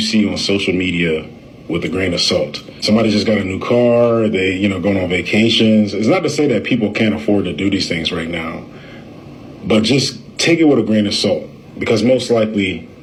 on social media with a grain of salt. Somebody just got a new car, they, going on vacations. It's not to say that people can't afford to do these things right now, but just take it with a grain of salt, because most likely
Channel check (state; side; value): identical; both; correlation 1.00